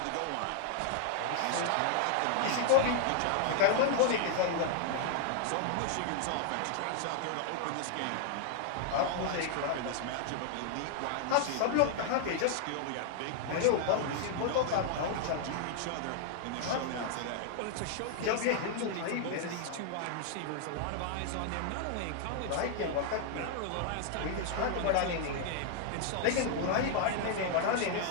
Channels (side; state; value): both; different; correlation 0.00